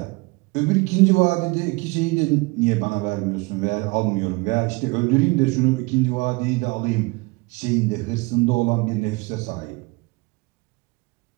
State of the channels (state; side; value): quieter; left; 25.9 dB